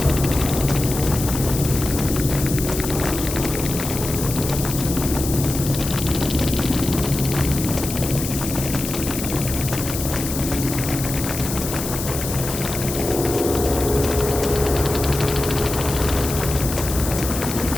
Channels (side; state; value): left; noise; hiss, 6 dB below the sound